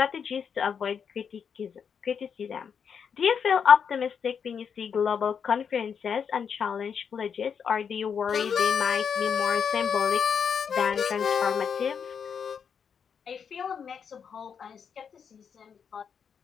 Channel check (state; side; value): quieter; right; 7.0 dB